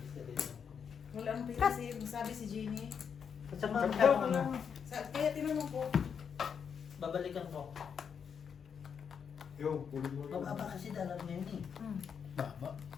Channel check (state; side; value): quieter; right; 7.0 dB